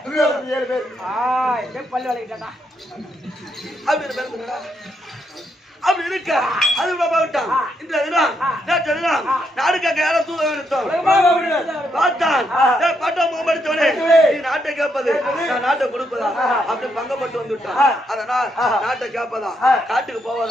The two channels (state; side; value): normal; both; correlation 0.78